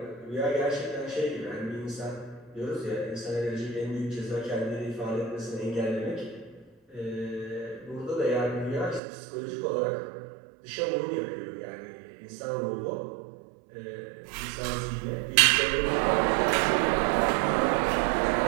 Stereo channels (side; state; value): left; drops out; at 9.0 s